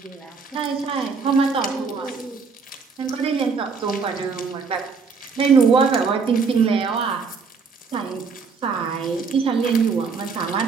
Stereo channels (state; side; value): quieter; left; 5.1 dB